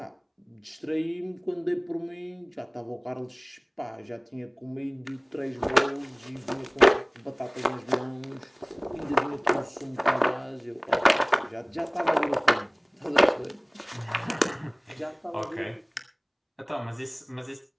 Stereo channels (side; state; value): both; identical; correlation 1.00